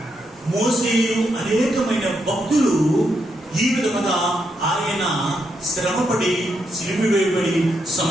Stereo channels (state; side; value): normal; both; correlation 0.80